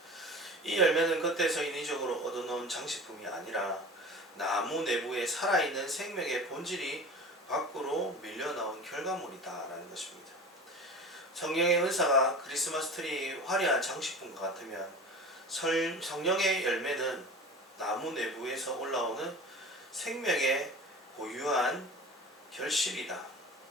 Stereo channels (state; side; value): normal; both; correlation 0.35